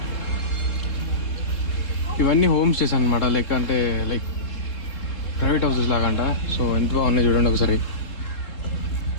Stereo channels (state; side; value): late; right; 3.7 ms